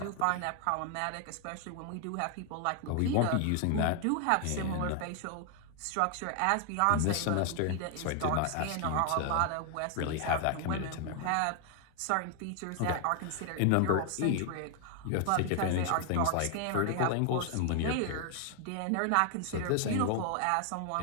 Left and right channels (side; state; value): both; different; correlation 0.00